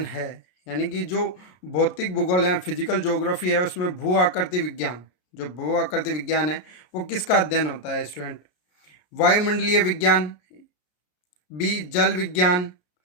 है। यानी कि जो भौतिक भूगोल या फिजिकल ज्योग्राफी है उसमें भू आकृति विज्ञान, जो भू आकृति विज्ञान है वो किसका अध्ययन होता है स्टूडेंट। वायुमंडलीय विज्ञान, बी जल विज्ञान,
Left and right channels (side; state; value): right; late; 33 ms